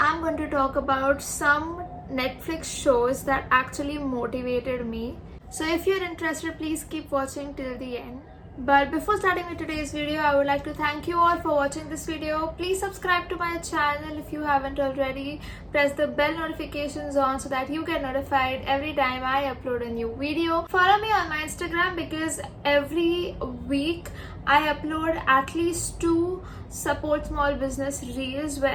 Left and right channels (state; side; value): identical; both; correlation 1.00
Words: going to talk about some Netflix shows that actually motivated me. So if you're interested, please keep watching till the end. But before starting with today's video, I would like to thank you all for watching this video. Please subscribe to my channel if you haven't already. Press the bell notifications on so that you get notified every time I upload a new video. Follow me on my Instagram because every week I upload at least 2 support small business reels